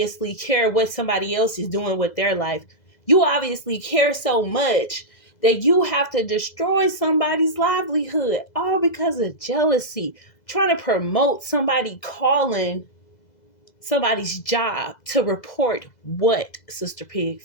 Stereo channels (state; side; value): late; right; 2.0 ms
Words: care what somebody else is doing with their life. You obviously care so much that you have to destroy somebody's livelihood all because of jealousy, trying to promote somebody calling somebody's job to report what, Sister